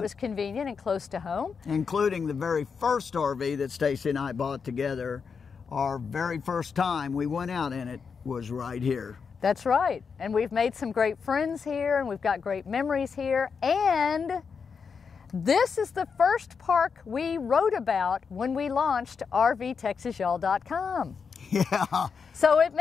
was convenient and close to home. Including the very first RV that Stacy and I bought together. Our very first time we went out in it was right here. That's right. And we've made some great friends here, and we've got great memories here. And this is the first park we wrote about when we launched RVTexasYall.com. Yeah. So it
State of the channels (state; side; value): quieter; right; 5.8 dB